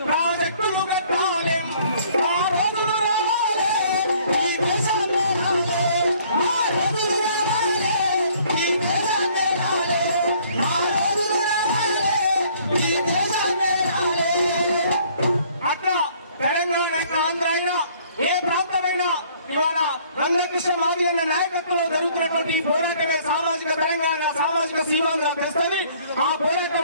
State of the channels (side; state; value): both; inverted; correlation -0.59